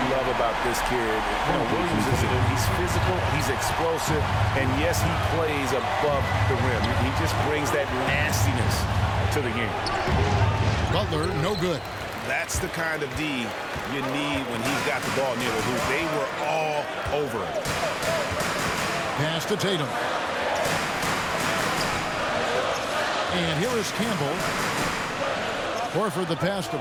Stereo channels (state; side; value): identical; both; correlation 1.00